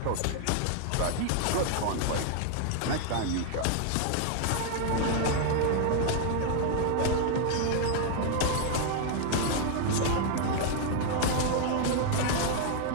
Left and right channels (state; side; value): different; both; correlation 0.00